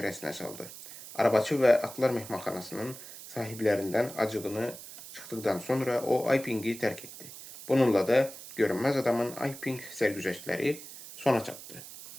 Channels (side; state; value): right; noise; hiss, 14 dB below the sound